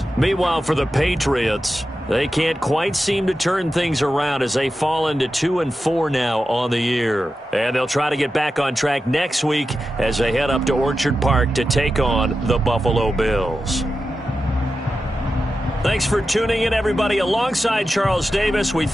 Meanwhile, for the Patriots, they can't quite seem to turn things around as they fall into 2-4 now on the year. And they'll try to get back on track next week as they head up to Orchard Park to take on the Buffalo Bills. Thanks for tuning in, everybody. Alongside Charles Davis, we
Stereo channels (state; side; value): normal; both; correlation 0.91